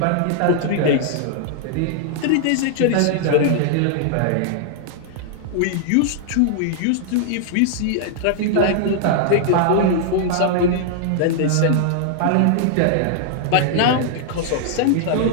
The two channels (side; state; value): both; different; correlation -0.01